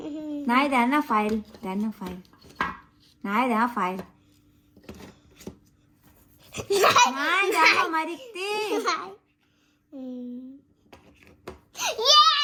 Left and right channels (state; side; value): identical; both; correlation 1.00